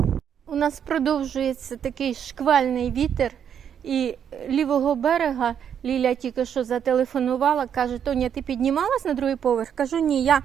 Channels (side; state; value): left; quieter; 8.5 dB